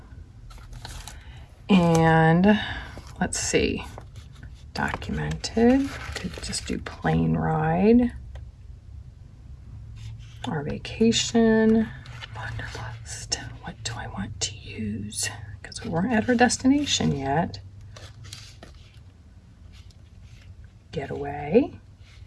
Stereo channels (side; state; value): both; identical; correlation 1.00